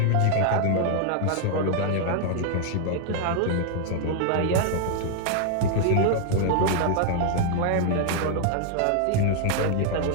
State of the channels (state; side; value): different; both; correlation 0.00